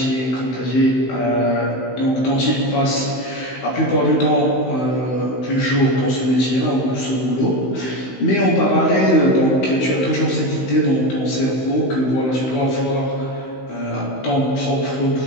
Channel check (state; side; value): late; right; 16 ms